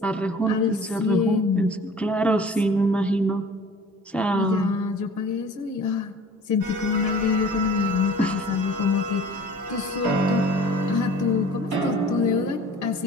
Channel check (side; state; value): both; normal; correlation 0.45